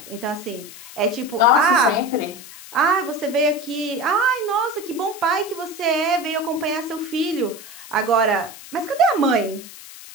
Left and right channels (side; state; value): left; noise; hiss, 16 dB below the sound